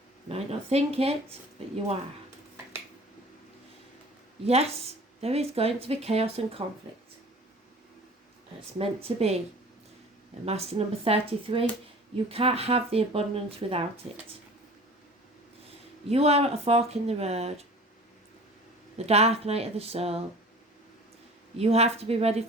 You might not think it, but you are. Yes, there is going to be chaos and conflict. It's meant to be. And Master number 33, you can't have the abundance without it. You are at a fork in the road, the dark night of the soul. You have to be ready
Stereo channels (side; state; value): both; normal; correlation 0.43